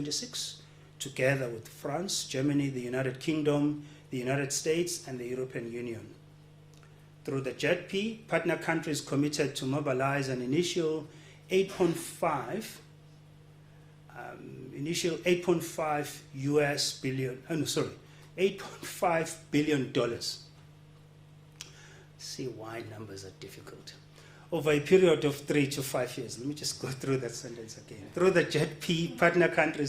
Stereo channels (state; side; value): identical; both; correlation 1.00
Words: together with France, Germany, the United Kingdom, the United States, and the European Union. Through the JET-P, partner countries committed to mobilize an initial 8.5 $8.5 billion. See why numbers are difficult. Over a period of 3 to 5 years. Let me just go through that sentence again. Through the JET-P, partner